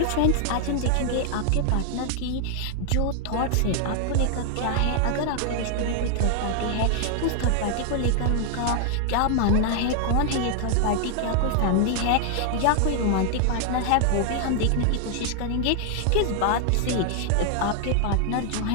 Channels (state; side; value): different; both; correlation 0.00